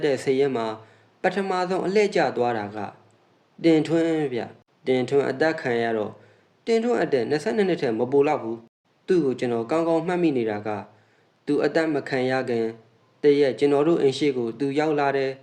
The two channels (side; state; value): both; identical; correlation 1.00